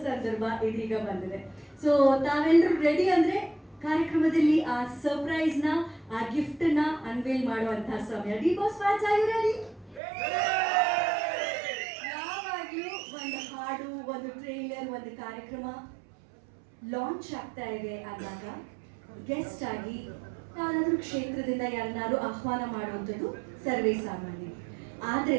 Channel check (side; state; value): left; drops out; at 10.0 s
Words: ಸಂದರ್ಭ ಇದೀಗ ಬಂದಿದೆ. ಸೊ ತಾವೆಲ್ಲರೂ ರೆಡಿ ಅಂದ್ರೆ ಕಾರ್ಯಕ್ರಮದಲ್ಲಿ ಆ ಸರ್ಪ್ರೈಸ್ ನ, ಆ ಗಿಫ್ಟ್ ನ ಅನ್ವೇಲ್ ಮಾಡುವಂತಹ ಸಮಯ. D boss fans are you ready? ಯಾವಾಗ್ಲೂ ಒಂದು ಹಾಡು, ಒಂದು ಟ್ರೈಲರ್, ಒಂದು ಕಾರ್ಯಕ್ರಮ ಲಾಂಚ್ ಆಗ್ತಾ ಇದೆ ಅಂದಾಗ ಗೆಸ್ಟ್ ಆಗಿ ಯಾರಾದ್ರೂ ಕ್ಷೇತ್ರದಿಂದ ಯಾರನ್ನಾರು ಆಹ್ವಾನ ಮಾಡುವಂಥದ್ದು ಸರ್ವೇ ಸಾಮಾನ್ಯ.